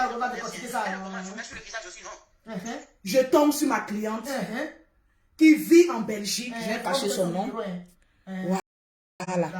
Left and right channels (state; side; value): identical; both; correlation 1.00